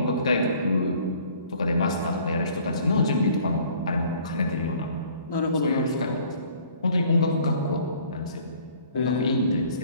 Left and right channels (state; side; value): inverted; both; correlation -0.54